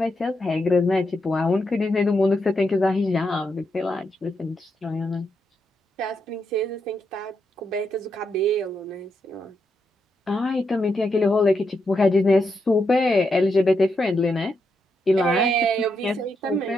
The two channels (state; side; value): normal; both; correlation 0.82